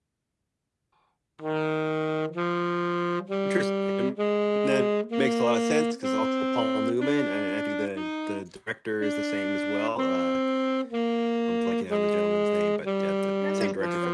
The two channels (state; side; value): identical; both; correlation 1.00